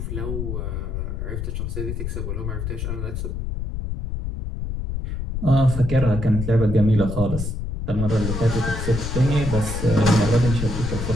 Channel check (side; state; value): left; noise; rumble, 4 dB below the sound